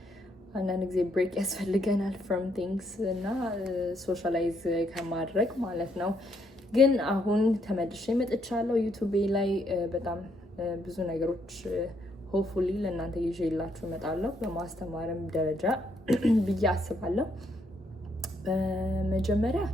አንዳንድ ጊዜ ብሬክ ያስፈልገናል from things እና ሶሻላይዝ ከማድረግ ማለት ነው። ግን አሁን ተመልሼ መጥቻለሁ ዩቲዩብ ላይ በጣም ብዙ ነገሮች ሆፕፉሊ ለእናንተ ይዤላችሁ እመጣለሁ በማስተማርም ደረጃ ብዬ አስባለሁ። በመጀመሪያ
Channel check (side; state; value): both; normal; correlation 0.73